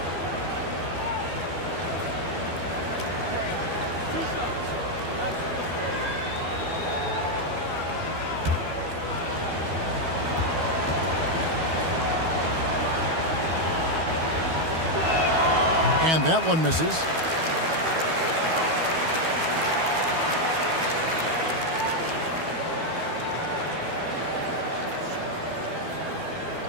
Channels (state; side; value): late; left; 12 ms